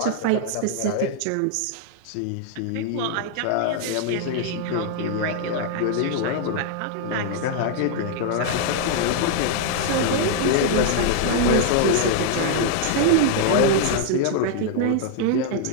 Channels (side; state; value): both; different; correlation 0.00